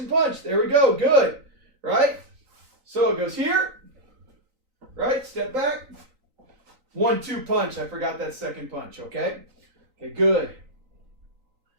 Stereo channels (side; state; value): left; late; 3.9 ms